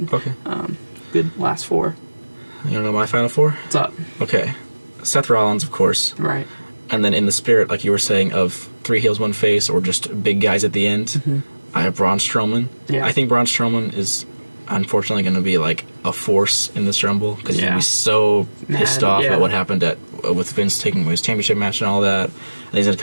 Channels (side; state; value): both; inverted; correlation -1.00